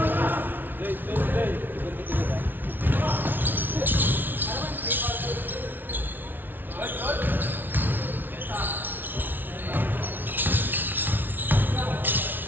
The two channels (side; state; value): left; late; 0.092 ms